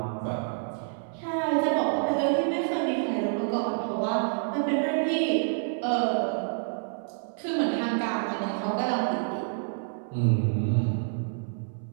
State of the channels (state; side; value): silent; left; 59 dB below the other